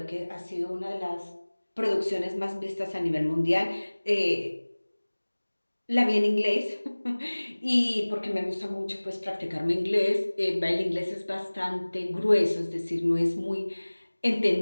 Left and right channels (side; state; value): both; inverted; correlation -1.00